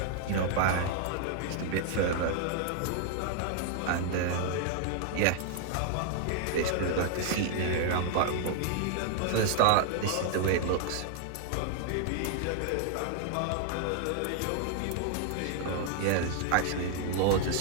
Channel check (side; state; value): both; different; correlation 0.00